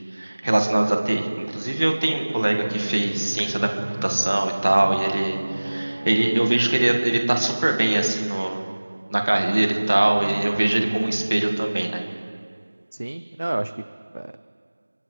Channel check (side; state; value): both; inverted; correlation -1.00